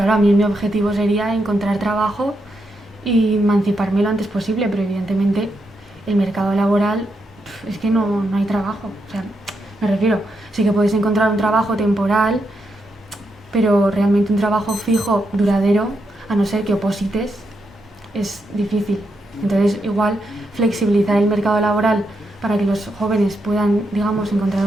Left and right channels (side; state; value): both; normal; correlation 0.82